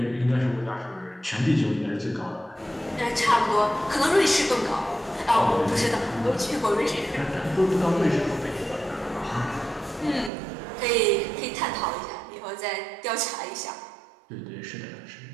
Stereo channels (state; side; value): drops out; left; at 10.3 s